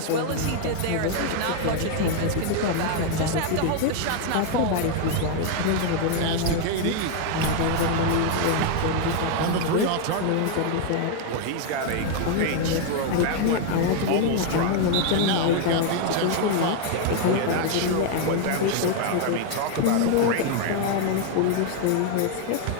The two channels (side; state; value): both; different; correlation 0.00